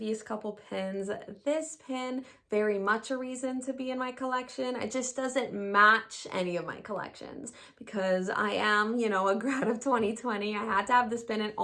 couple pins, this pin very much a reason to be in my collection. It just doesn't match any of my collections because I am, you know, a grad of 2020. I had to have this pin, and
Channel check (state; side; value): identical; both; correlation 1.00